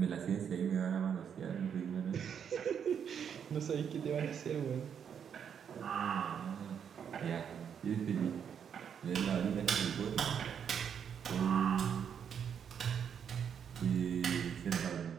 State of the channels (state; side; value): quieter; left; 7.9 dB